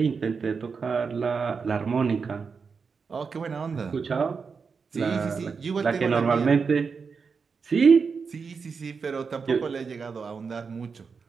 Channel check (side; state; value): left; quieter; 5.4 dB